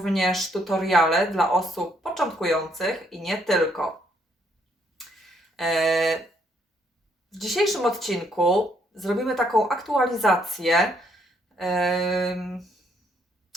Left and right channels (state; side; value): normal; both; correlation 0.70